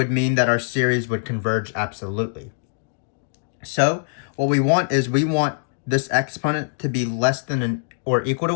mean that our series would converge absolutely. So what we want is we want this exponent to be less than or equal to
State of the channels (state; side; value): silent; right; digital silence